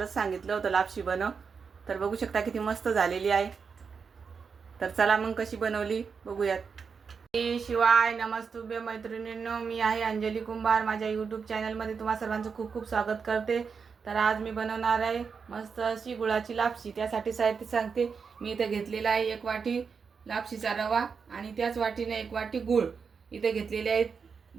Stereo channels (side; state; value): left; quieter; 5.7 dB